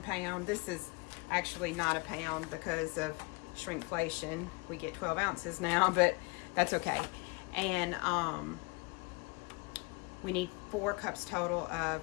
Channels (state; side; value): quieter; right; 28.5 dB